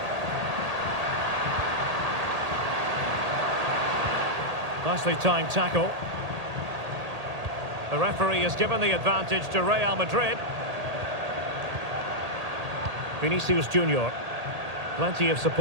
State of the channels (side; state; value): left; late; 1.8 ms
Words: Nicely timed tackle. The referee has given the advantage to Real Madrid. Vinicius Junior. Plenty of